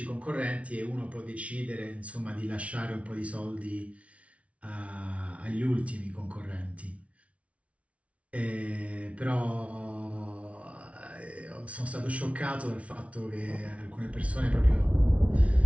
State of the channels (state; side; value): late; left; 0.064 ms